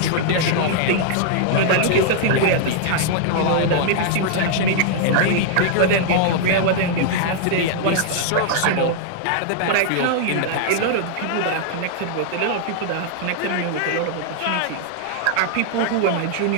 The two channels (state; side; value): different; both; correlation 0.00